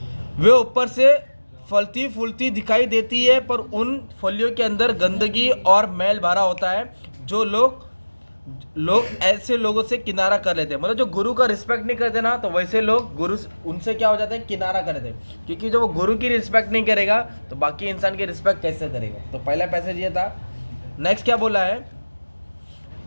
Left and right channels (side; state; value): both; inverted; correlation -1.00